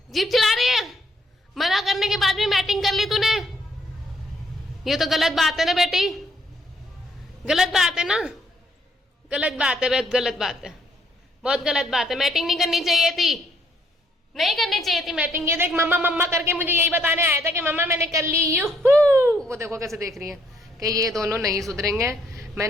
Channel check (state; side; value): normal; both; correlation 0.70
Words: जीप चला रही है। मना करने के बाद भी मैटिंग कर ली तूने। ये तो गलत बात है ना बेटी, गलत बात है ना, गलत बात है, बहुत गलत बात है, बहुत गलत बात है। मैटिंग नहीं करनी चाहिए थी, नहीं करनी चाहिए थी मैटिंग। ये देख मम्मा मम्मा करके मुझे यही बताने आया था कि मम्मा मैंने कर ली। यूहू वो देखो कैसे देख रही है कि ये दोनों नहीं सुधरेंगे।